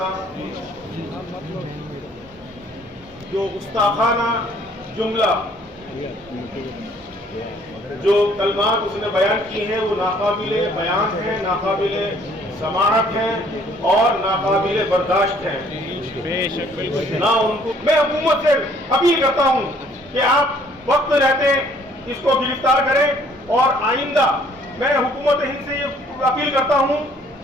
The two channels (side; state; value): both; normal; correlation 0.60